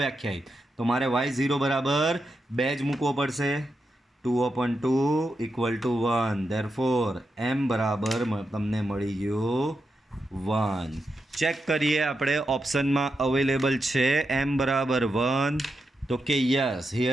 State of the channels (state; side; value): normal; both; correlation 0.86